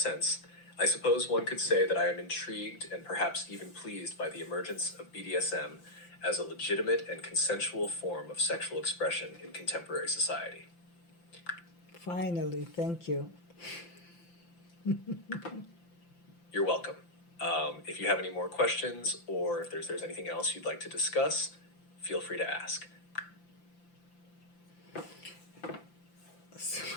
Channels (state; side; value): late; right; 5.8 ms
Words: I suppose one could say that I am intrigued and perhaps even pleased by the emergence of BDSM as a legitimate and consensual form of sexual expression in contemporary society. Finally, thank you. You're welcome. If you have any more questions or if there's anything else you'd like to discuss, feel free to ask. So,